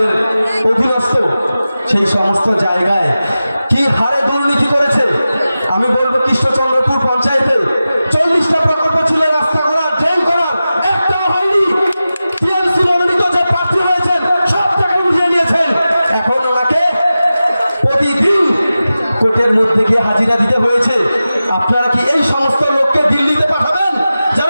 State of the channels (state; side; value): inverted; both; correlation -0.94